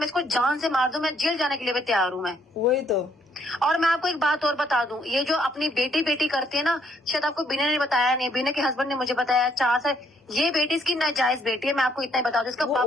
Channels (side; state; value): both; normal; correlation 0.69